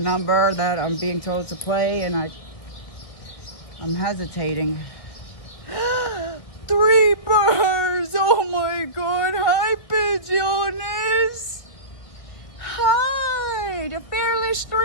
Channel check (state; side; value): late; right; 1.7 ms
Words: that I'm being told to play, and I'm hesitating. 3 birds! Oh my God! Hi, pigeons! Hi, the fearless